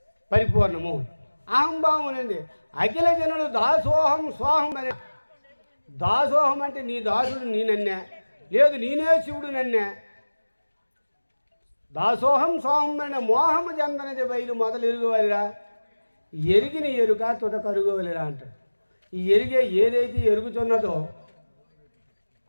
పరిపూర్ణము. అహంభావం అనేది అఖిల జనులు దాసోహం సోహం అనే. దాసోహం అంటే నీ దాసుడు నేనన్నే, లేదు నేనే శివుడు నన్నే. దాసోహం సోహం అనే మోహము చెందనది బయలు మొదలు ఎరుగువలిరా, ఎరిగిన ఎరుక తుద కరుగువలిరా అంటాడు. ఈ ఏదైతే ఎరుగుతున్నదో,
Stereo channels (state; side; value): inverted; both; correlation -1.00